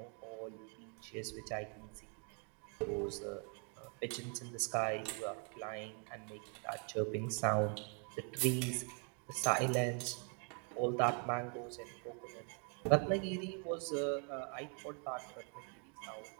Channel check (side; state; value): left; quieter; 39.4 dB